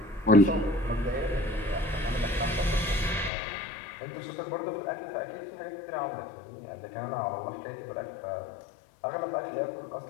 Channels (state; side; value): drops out; right; at 3.3 s